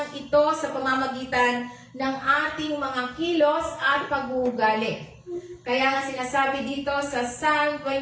ito sa pamamagitan ng ating mga kilos at pag-uugali. Kaya nga sinasabi dito sa Psalm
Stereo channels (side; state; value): both; identical; correlation 1.00